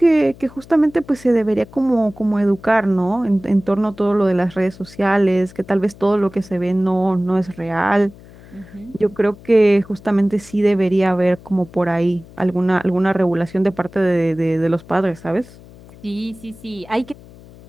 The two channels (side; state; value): left; noise; hum, 21 dB below the sound